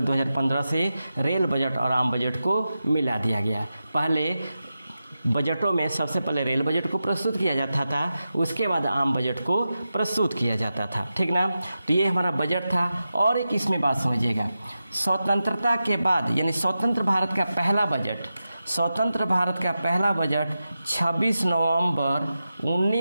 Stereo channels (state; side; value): inverted; both; correlation -0.92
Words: 2015 से रेल बजट और आम बजट को मिला दिया गया। पहले बजटों में सबसे पहले रेल बजट को प्रस्तुत किया जाता था, उसके बाद आम बजट को प्रस्तुत किया जाता था, ठीक ना। तो ये हमारा बजट था। और एक इसमें बात समझिएगा, स्वतंत्रता के बाद यानी स्वतंत्र भारत का पहला बजट, स्वतंत्र भारत का पहला बजट 26 नवंबर